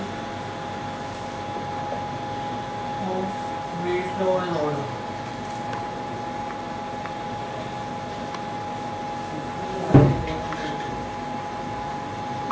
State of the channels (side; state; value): both; identical; correlation 1.00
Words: of rate, law and order.